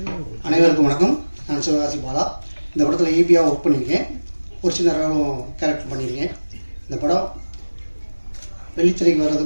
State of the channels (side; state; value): both; inverted; correlation -1.00